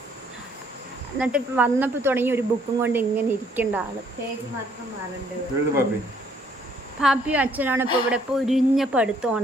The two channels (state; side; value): normal; both; correlation 0.65